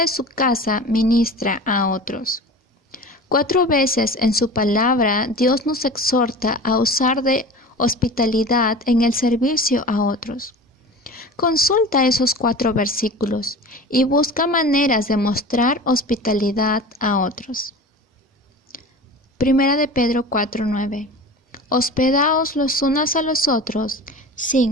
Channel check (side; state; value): both; normal; correlation 0.35